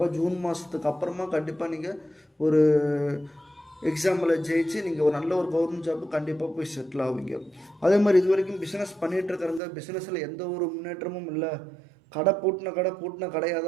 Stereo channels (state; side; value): drops out; left; at 9.6 s